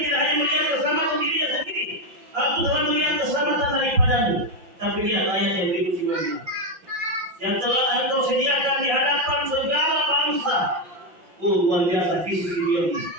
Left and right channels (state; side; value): late; left; 5.8 ms